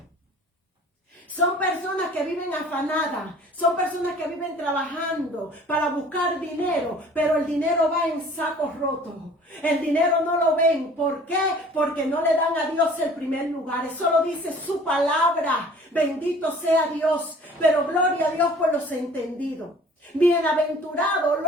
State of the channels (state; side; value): normal; both; correlation 0.49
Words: Son personas que viven afanadas, son personas que viven trabajando para buscar dinero, pero el dinero va en sacos rotos. El dinero no lo ven. ¿Por qué? Porque no le dan a Dios el primer lugar. Eso lo dice su palabra. Bendito sea Dios. Pero gloria a Dios por los entendidos. Bienaventurados